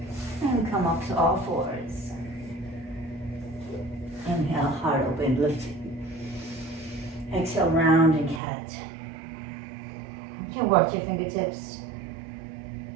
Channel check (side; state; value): left; drops out; at 8.4 s